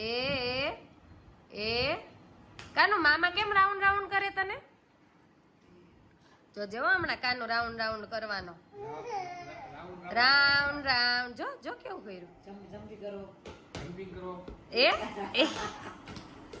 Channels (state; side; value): identical; both; correlation 1.00